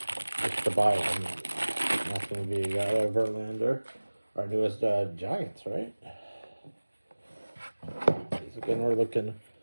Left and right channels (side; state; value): both; inverted; correlation -1.00